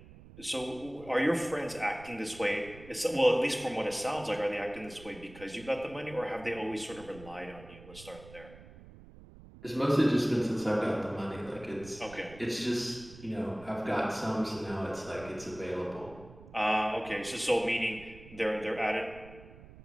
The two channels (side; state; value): right; noise; rumble, 18 dB below the sound